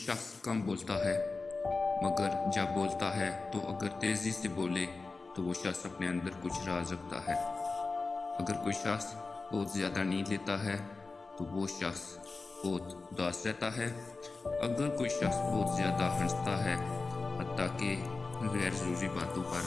کم بولتا ہے مگر جب بولتا ہے تو اگر تیزی سے بولے تو وہ شخص اپنے اندر کچھ راز رکھتا ہے۔ اگر کوئی شخص بہت زیادہ نیند لیتا ہے تو وہ شخص بہت اداس رہتا ہے۔ اگر کوئی شخص بہت زیادہ ہنستا ہے، حتیٰ کہ غیر ضروری باتوں پر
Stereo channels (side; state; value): right; quieter; 3.9 dB